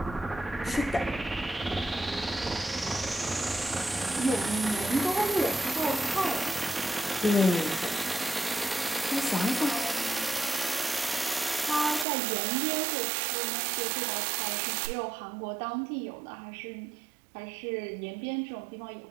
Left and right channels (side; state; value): left; drops out; at 12.1 s